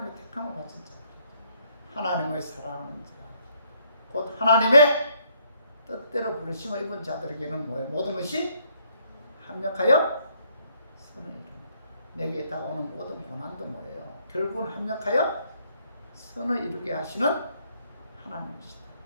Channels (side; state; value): both; inverted; correlation -0.69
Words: 택함을 받은 자들. 하나님을 사랑하는 자. 곧 하나님의 뜻대로 부르심을 입은 자들에게는 뭐예요? 모든 것이 합력하여 선을 이룹니다. 내게 다가오는 모든 고난도 뭐예요? 결국은 합력하여 선을 이루게 하시는 하나님이시다.